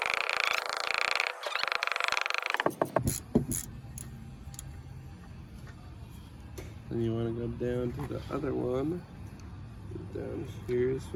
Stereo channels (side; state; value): both; identical; correlation 1.00